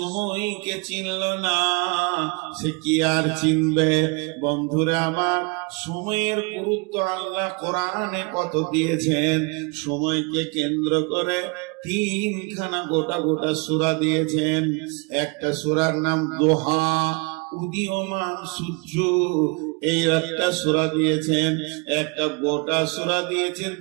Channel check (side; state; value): left; quieter; 31.0 dB